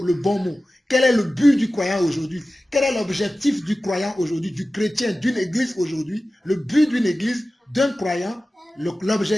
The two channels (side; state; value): both; normal; correlation 0.95